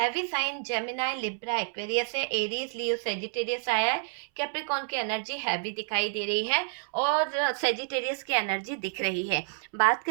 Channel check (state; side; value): silent; left; 58 dB below the other